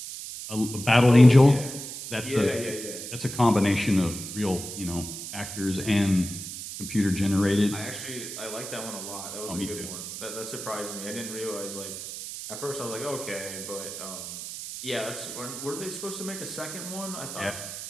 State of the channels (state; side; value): noise; right; hiss, 9 dB below the sound